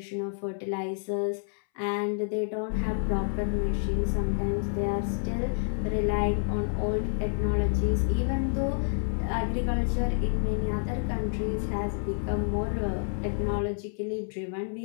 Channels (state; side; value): silent; right; 59 dB below the other